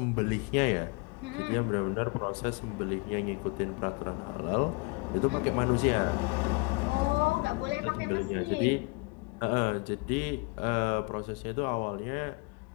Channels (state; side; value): quieter; right; 28.6 dB